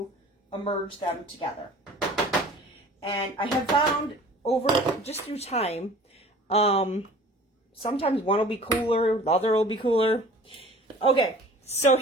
immerse them together. And I have found over, just through time, sometimes one will be cooler, the other will be cooler. Okay, so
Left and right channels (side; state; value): both; normal; correlation 0.46